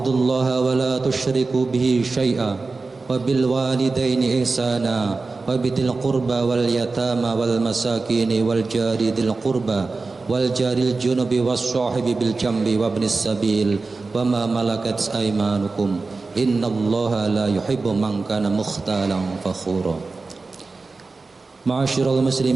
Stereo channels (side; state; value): left; quieter; 3.9 dB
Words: wa la tusyriku bihi syai'a wa bil walidaini ihsana wa bidil qurba wal yatama wal masakini wal jari dil qurba wal jaril junubi was sahibi bil jambi wa ibnis sabil wa ma malakat aymanukum innallaha la yuhibbu man kana mukhtalan fakhura. Ma'asyiral